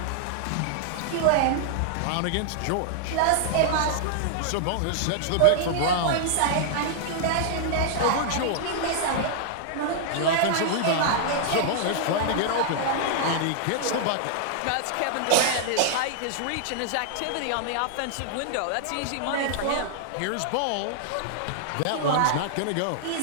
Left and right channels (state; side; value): different; both; correlation -0.01